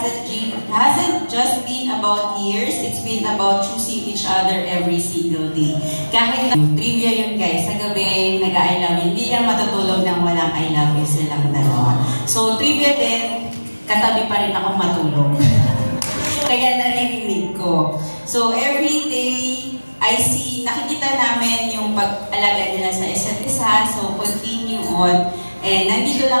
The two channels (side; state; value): both; inverted; correlation -1.00